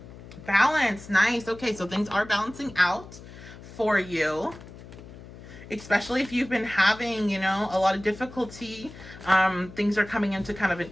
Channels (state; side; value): noise; left; hum, 16 dB below the sound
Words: Balance. Nice. Okay, so things are balancing out for you, especially if you've been having, you know, a lot of difficulty. Things are coming into kind of an